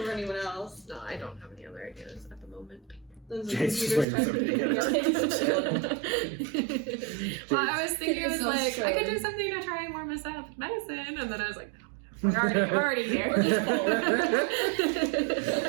anyone else. No, I don't have any other ideas at the moment. Then the Jake's just computer's waiting for somebody to typing. Well, I was thinking, I was So like, I could do strange. something to try and warm us up with medicine, and then I was like, no, we're already here.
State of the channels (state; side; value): drops out; left; at 4.0 s